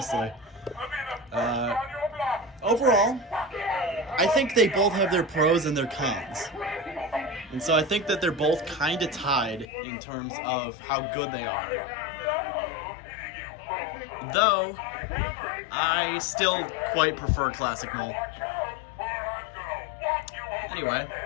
Overall, I think they both have their pros and their cons. And so I think that they're both kind of tied in terms of how good they are. Though, I still quite prefer Classic Mole. Anyway.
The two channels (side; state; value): right; drops out; at 9.7 s